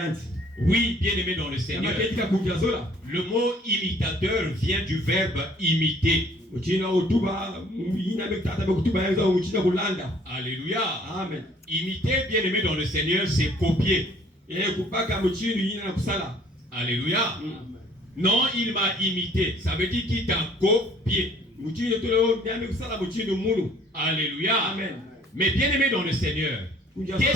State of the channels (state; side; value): normal; both; correlation 0.57